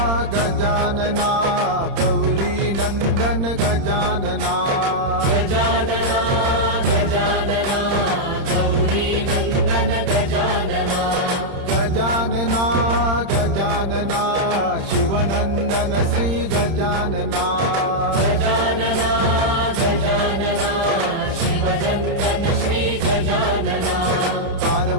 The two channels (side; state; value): left; late; 31 ms